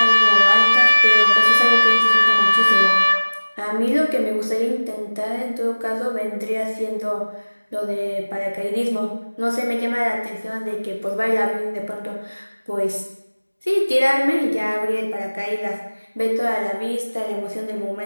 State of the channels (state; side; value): inverted; both; correlation -1.00